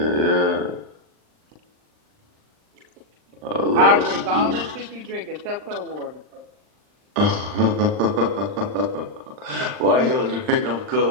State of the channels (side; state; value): left; late; 39 ms